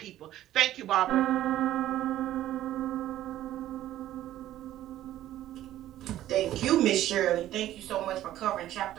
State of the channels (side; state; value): left; quieter; 13.4 dB